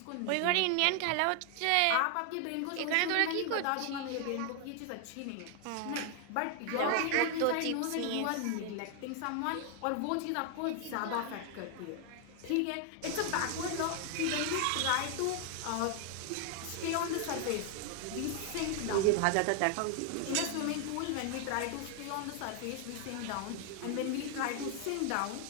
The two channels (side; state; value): both; different; correlation 0.00